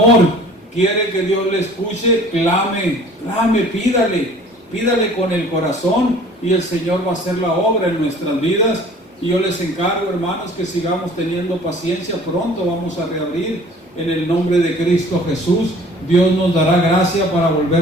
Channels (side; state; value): both; normal; correlation 0.49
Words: Quiere que Dios le escuche, clame, pídale con el corazón, y el Señor va a hacer la obra en nuestras vidas. Y yo les encargo, hermanos, que sigamos teniendo paciencia. Pronto vamos a reabrir en el nombre de Cristo Jesús. Dios nos dará gracia para